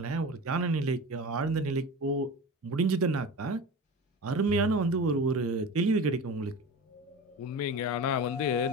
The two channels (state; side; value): normal; both; correlation 0.31